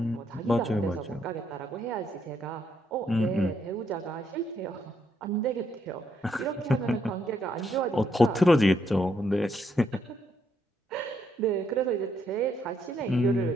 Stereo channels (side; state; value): both; normal; correlation 0.75